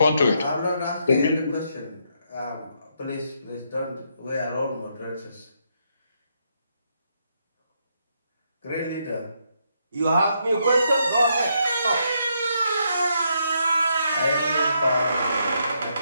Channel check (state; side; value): inverted; both; correlation -0.77